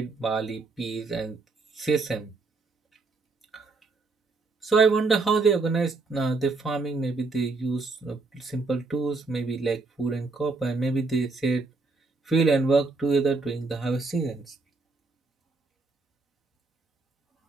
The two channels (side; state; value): left; quieter; 3.8 dB